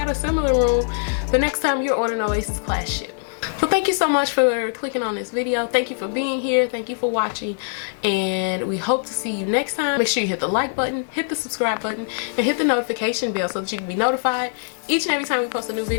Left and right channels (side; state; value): right; silent; digital silence